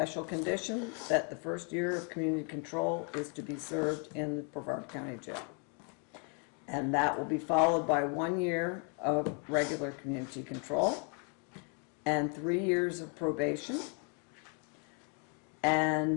condition that the first year of community control is to be served in the Brevard County Jail. And that will be followed by 1 year of regular community control and 3 years of probation.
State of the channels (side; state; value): right; quieter; 38.9 dB